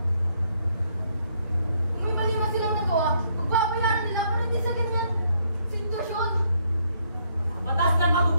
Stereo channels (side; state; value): both; inverted; correlation -0.71